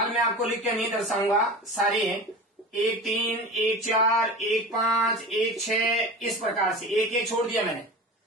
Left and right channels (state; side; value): normal; both; correlation 0.32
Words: मैं आपको लिख के नहीं दर्शाऊंगा सारे, 1 3, 1 4, 1 5, 1 6, इस प्रकार से 1 1 छोड़ दिया मैंने।